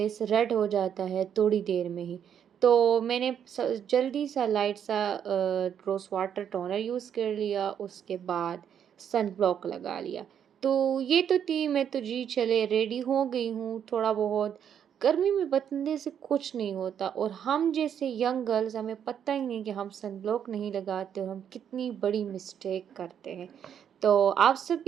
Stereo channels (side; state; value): left; quieter; 8.7 dB